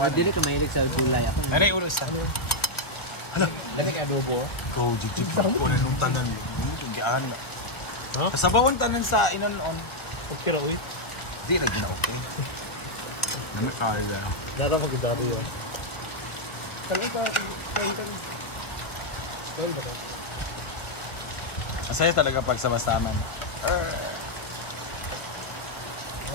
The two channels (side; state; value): right; late; 1.6 ms